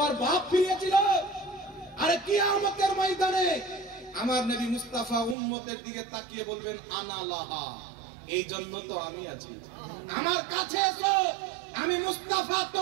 ওর বাপ ফিরিয়েছিল? আরে কিয়ামতের ময়দানে আমার নবী মুস্তাফা উম্মতের দিকে তাকিয়ে বলবেন আনা লাহা, এই জন্য তো আমি আছি, আমার কাছে এসো। আমি মুস্তাফা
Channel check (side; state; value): left; drops out; at 5.4 s